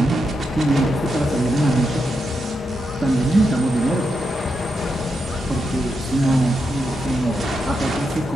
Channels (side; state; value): both; normal; correlation 0.84